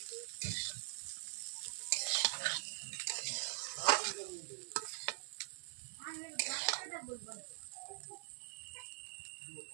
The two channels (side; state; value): left; silent; digital silence